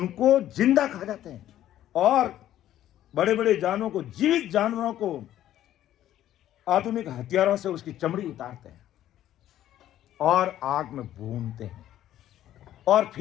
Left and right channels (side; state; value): right; quieter; 12.4 dB